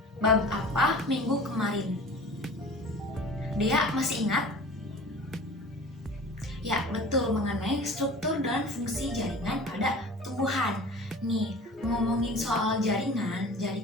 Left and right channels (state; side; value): normal; both; correlation 0.41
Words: bab apa minggu kemarin? Dia masih ingat? Ya, betul, mengenai struktur dan fungsi jaringan pada tumbuhan. Nih, ngomongin soal jaringan